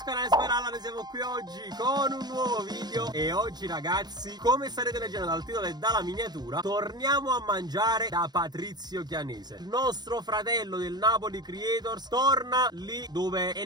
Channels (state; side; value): late; left; 0.20 ms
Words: canale Speralla, noi siamo qui oggi con un nuovo video. E oggi ragazzi, come starete leggendo dal titolo e dalla miniatura, torniamo a mangiare da Patrizio Chianese. Il nostro fratello del Napoli Creators torna lì dove è